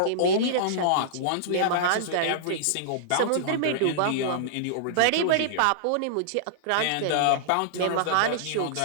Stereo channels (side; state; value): both; different; correlation -0.02